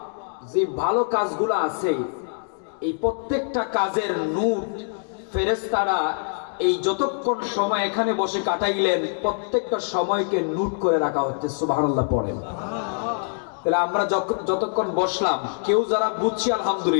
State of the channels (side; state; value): right; silent; 62 dB below the other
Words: যে ভালো কাজগুলো আছে, এই প্রত্যেকটা কাজের নূর ফেরেশতারা এই যতক্ষণ সময় এখানে বসে কাটাইলেন, প্রত্যেকটা সময়কে নোট করে রাখা হচ্ছে। সুবহানাল্লাহ পড়েন। তাহলে আমরা যতক্ষণ বসলাম, কেউ যারা বুঝছি